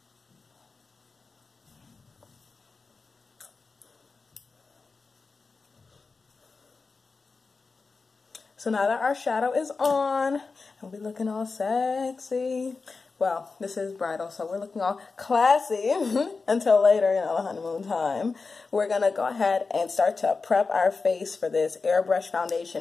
So now that our shadow is on and we're looking all sexy, well, this is bridal, so we're looking all classy until later, you know, the honeymoon time. We're going to go ahead and start to prep our face for this airbrush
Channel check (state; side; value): quieter; right; 4.3 dB